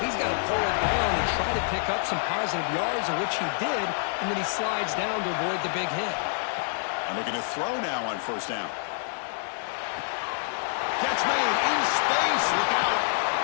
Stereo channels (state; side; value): silent; right; digital silence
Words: got to pull it down and try to pick up some positive yards, which he did, and then he slides down to avoid the big hit. And looking to throw now on first down. Catch made in space. Look out.